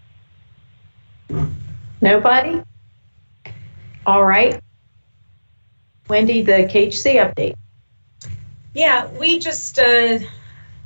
Nobody? All right. Wendy, the KHC update. Yeah, we just, for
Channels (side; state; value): both; inverted; correlation -1.00